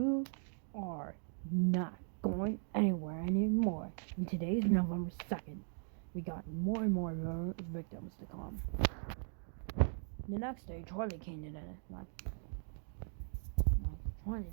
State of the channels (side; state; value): left; silent; 52 dB below the other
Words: are not going anywhere anymore. And today's November 2nd. We got more and more victims to come. The next day, Charlie came in like Charlie,